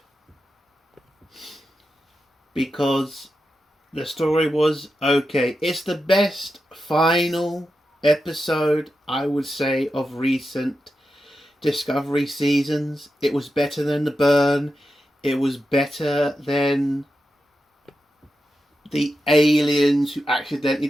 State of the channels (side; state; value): both; normal; correlation 0.89